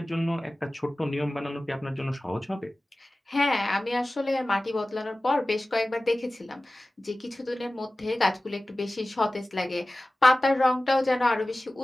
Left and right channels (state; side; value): normal; both; correlation 0.97